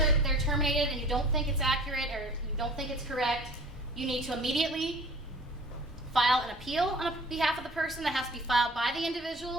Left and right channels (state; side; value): normal; both; correlation 0.45